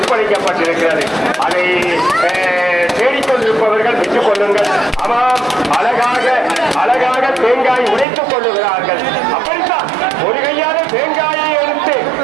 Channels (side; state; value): left; drops out; at 8.1 s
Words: அதை தேடிக்கொண்டிருப்பவர்கள் பெற்றுக் கொள்ளுங்கள். ஆமாம், அழகாக தேங்காய் உடைத்துக் கொள்ளுகிறார்கள். அப்படித்தான் ஒரு கையால தேங்காயை எடுத்து